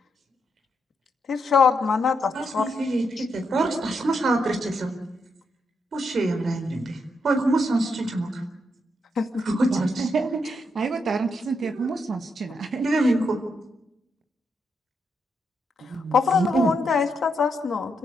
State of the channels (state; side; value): normal; both; correlation 0.80